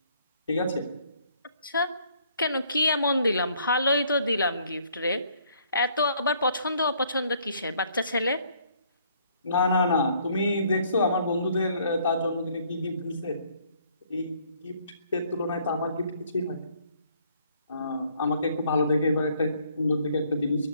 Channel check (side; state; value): both; inverted; correlation -0.64